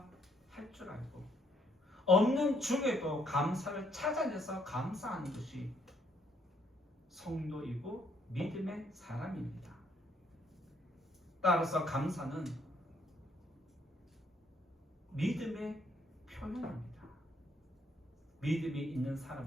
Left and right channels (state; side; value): normal; both; correlation 0.70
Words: 줄 알고 없는 중에도 감사를 찾아내서 감사하는 것이 성도이고 믿음의 사람입니다. 따라서 감사는 믿음의 표현입니다. 믿음이 있는